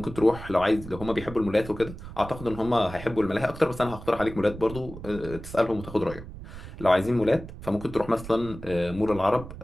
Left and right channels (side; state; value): right; noise; rumble, 13 dB below the sound